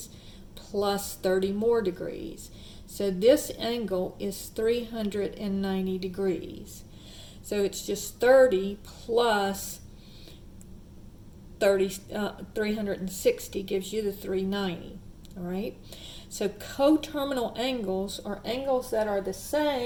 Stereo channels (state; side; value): identical; both; correlation 1.00